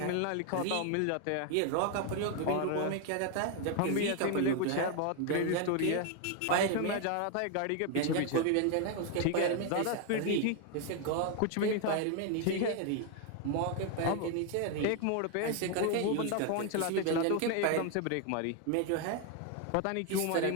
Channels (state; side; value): different; both; correlation 0.01